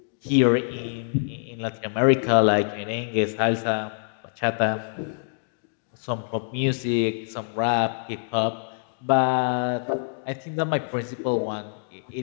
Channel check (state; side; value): silent; right; digital silence